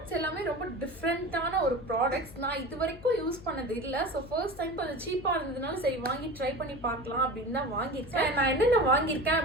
எல்லாமே ரொம்ப டிஃப்ரெண்டான ஒரு ப்ராடக்ட்ஸ். நான் இது வரைக்கும் யூஸ் பண்ணது இல்லை. ஸோ ஃபர்ஸ்ட் டைம் கொஞ்சம் சீப்பா இருந்ததுனால சரி வாங்கி ட்ரை பண்ணி பார்க்கலாம் அப்படின்னு தான் வாங்கியிருக்கேன். நான் என்னென்ன வாங்கியிருக்கேன்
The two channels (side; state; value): left; noise; hum, 17 dB below the sound